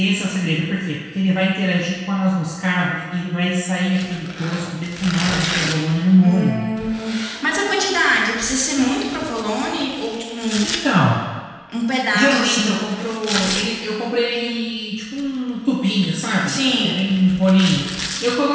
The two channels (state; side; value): identical; both; correlation 1.00